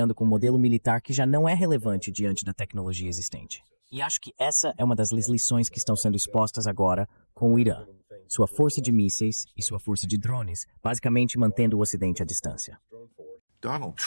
com um modelo militar que já não é relevante diante da tecnologia existente. E acho que essa é uma das lições que estão sendo expostas agora com o Irã. Sua força de mísseis e sua força de drones, basicamente mantendo o Ocidente à distância. Donald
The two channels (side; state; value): both; inverted; correlation -1.00